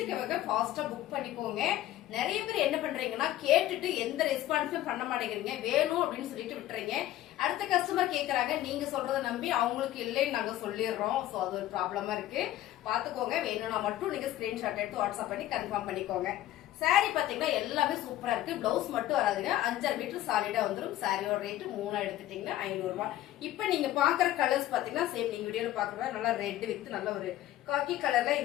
ஃபாஸ்டா புக் பண்ணிக்கோங்க. நிறைய பேர் என்ன பண்றீங்கன்னா கேட்டுட்டு எந்த ரெஸ்பான்ஸும் பண்ண மாட்டேங்கிறீங்க, வேணும் அப்படின்னு சொல்லிட்டு விட்டுறீங்க. அடுத்த கஸ்டமர் கேக்குறாங்க, நீங்க சொல்றத நம்பி அவங்களுக்கு இல்லைன்னு நாங்க சொல்லிடுறோம். சோ அது ஒரு ப்ராப்ளமா இருக்கு, பாத்துக்கோங்க. வேணும்னா மட்டும் நீங்க ஸ்கிரீன்ஷாட் எடுத்து வாட்ஸ்அப் பண்ணி கன்ஃபார்ம் பண்ணிக்கோங்க. சாரி பாத்தீங்கன்னா எல்லாமே சூப்பரா இருக்கு. பிளவுஸ் மட்டும் வராதுங்க, 5 மீட்டர் சாலிடா வந்துடும். சாரியோட ரேட் 3 எடுத்துட்டீங்கன்னா 500 ரூபாய். இப்ப நீங்க பாக்குற கலர்ஸ் பாத்தீங்கன்னா சேம் நீங்க வீடியோல பாக்குற நல்லா ரெட் வித் நல்ல ஒரு காக்கி கலர்ல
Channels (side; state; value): right; quieter; 14.2 dB